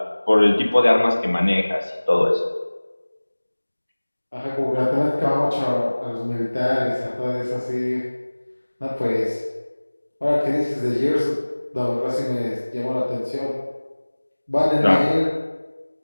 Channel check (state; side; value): inverted; both; correlation -1.00